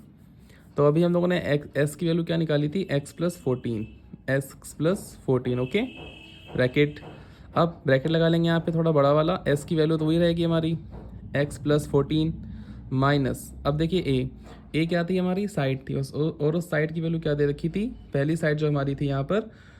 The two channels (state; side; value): identical; both; correlation 1.00